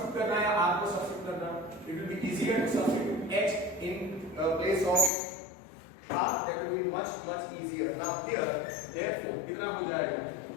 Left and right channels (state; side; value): drops out; right; at 5.1 s